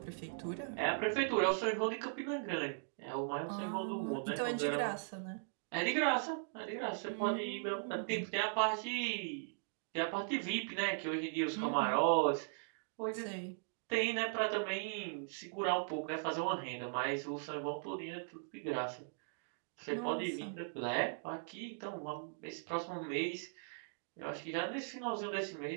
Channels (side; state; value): left; silent; digital silence